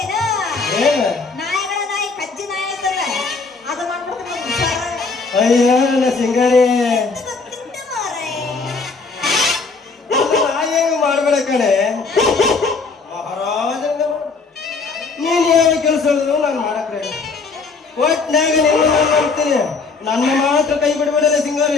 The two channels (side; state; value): right; quieter; 4.4 dB